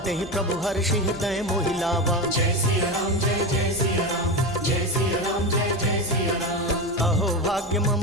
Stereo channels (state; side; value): normal; both; correlation 0.19